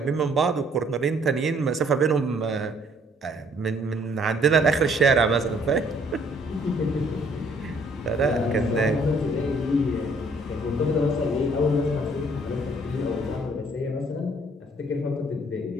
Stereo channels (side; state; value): both; normal; correlation 0.62